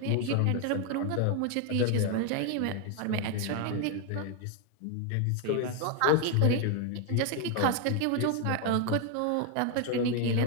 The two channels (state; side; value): different; both; correlation 0.01